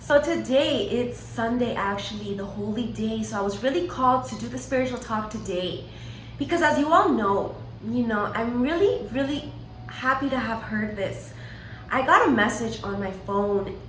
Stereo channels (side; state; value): both; identical; correlation 1.00